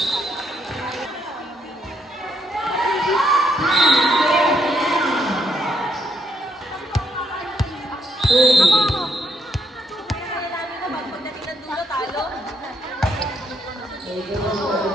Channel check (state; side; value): normal; both; correlation 0.75